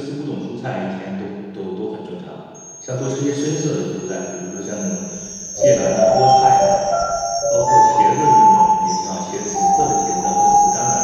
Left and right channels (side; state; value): both; identical; correlation 1.00